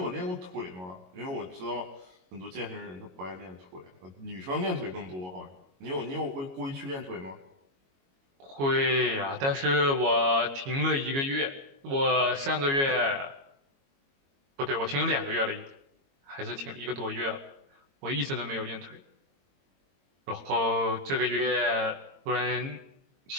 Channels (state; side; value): late; left; 22 ms